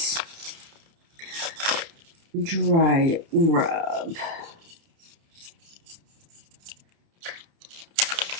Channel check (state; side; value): late; left; 30 ms